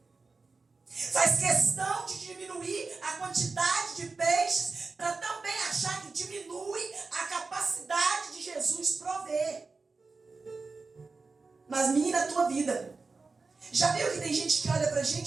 Faz questão de diminuir a quantidade de peixes para também achar que diminui a capacidade de Jesus prover. Mas menina, a tua vida. Já viu que tem gente que olha pra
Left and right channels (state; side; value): quieter; left; 4.1 dB